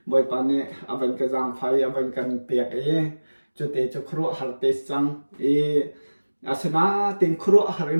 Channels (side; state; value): both; inverted; correlation -1.00